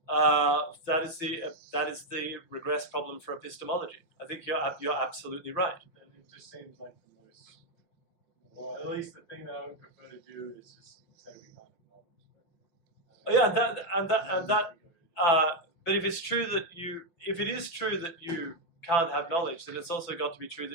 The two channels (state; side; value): late; right; 5.9 ms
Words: That is the regress problem for epistemology. I think you're absolutely right. And it just seems like the most, well, at least the thing that I would prefer to do is just say we can't acknowledge. But if it is true that you can't have knowledge, then it's also got to be true